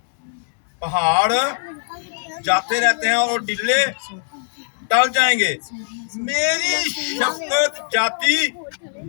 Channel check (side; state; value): right; silent; digital silence